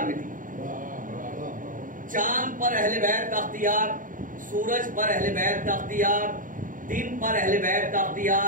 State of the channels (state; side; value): late; left; 0.39 ms